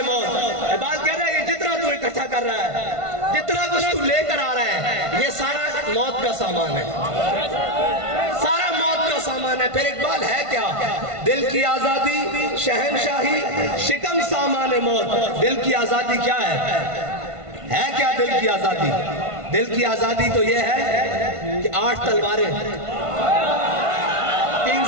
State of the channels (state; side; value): late; left; 1.5 ms